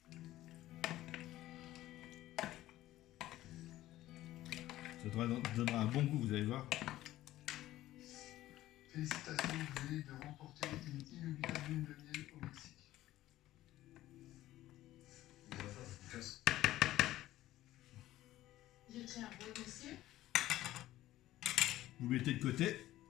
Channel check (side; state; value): right; quieter; 15.1 dB